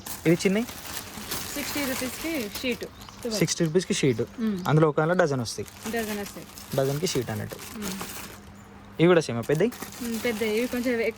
ఇవి చిన్నవి 60 రూపీస్కి షీట్. 60 రూపీస్కి షీట్. అందులో ఒక డజన్ వస్తాయి. డజన్కి షీట్ అన్నట్టు. ఇవి కూడా సేమ్ పెద్దవి. ఇవి కొంచెం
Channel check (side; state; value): both; identical; correlation 1.00